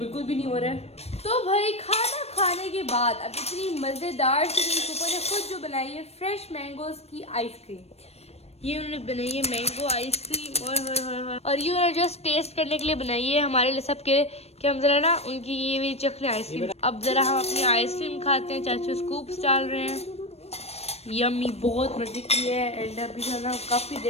भी नहीं हो रहा है। तो भाई खाना खाने के बाद अब इतनी मज़ेदार से मेरी पप्पू ने खुद जो बनाई है फ्रेश मैंगोज़ की आइसक्रीम, ये उन्होंने बनाई है मैंगो आइसक्रीम और ये उन्होंने जस्ट टेस्ट करने के लिए बनाई है हमारे लिए सब के कि हम जरा ना उनकी ये भी चखने आइसक्रीम। अब जरा हम अपनी आइसक्रीम खाते हैं। चाचू स्कूप्स डाल रहे हैं। यम्मी, बहुत मजे की है। एंड अभी जो है ना काफ़ी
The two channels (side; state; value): right; late; 0.30 ms